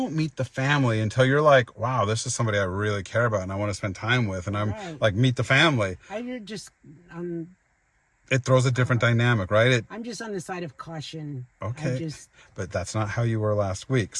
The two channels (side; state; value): both; identical; correlation 1.00